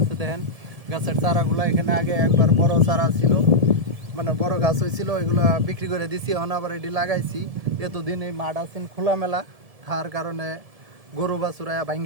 দেখেন, গাছের চারাগুলা এখানে আগে একবার বড় চারা ছিল, মানে বড় গাছ হয়েছিল, ওইগুলো বিক্রি করে দিছি, এখন আবার এটি লাগাইছি। এতদিন এই মাঠ আছেন খোলামেলা, তার কারণে গরু বাছুরা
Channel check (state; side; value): late; left; 1.7 ms